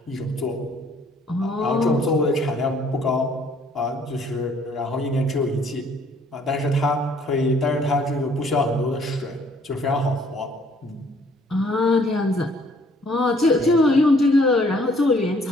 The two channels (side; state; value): both; normal; correlation 0.61